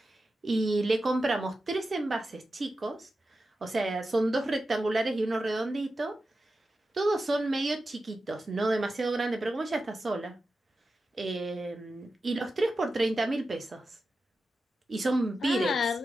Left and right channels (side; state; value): both; normal; correlation 0.91